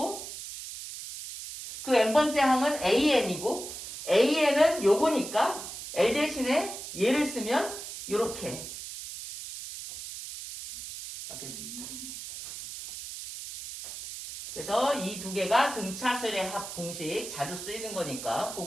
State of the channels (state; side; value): noise; right; hiss, 10 dB below the sound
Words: 그 n번째 항은 AN이고 AN은 요거니까 L 대신에 얘를 쓰면 이렇게 바뀔 수 있다. 그래서 이 두 개가 등차수열의 합 공식 자주 쓰이는 거니까